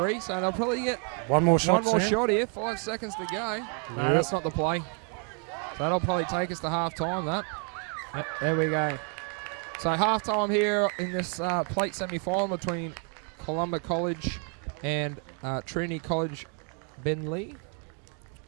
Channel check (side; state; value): left; quieter; 39.9 dB